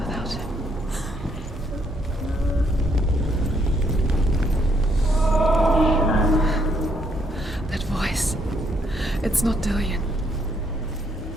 him. That voice. It's not Dillion.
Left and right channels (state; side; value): normal; both; correlation 0.71